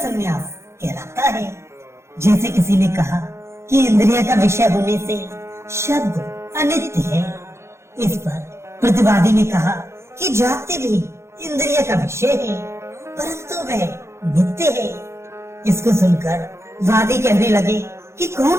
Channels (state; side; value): late; left; 0.13 ms